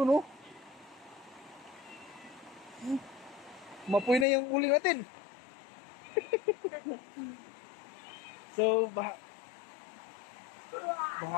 no? Mapoy na yung uling natin. So, baha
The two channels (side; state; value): right; drops out; at 4.2 s